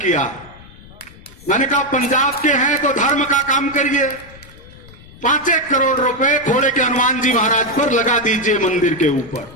मैंने कहा पंजाब के हैं तो धर्म का काम करिए, 5-1 करोड़ रुपए खोड़े के हनुमान जी महाराज पर लगा दीजिए मंदिर के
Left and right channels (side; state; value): left; noise; rumble, 21 dB below the sound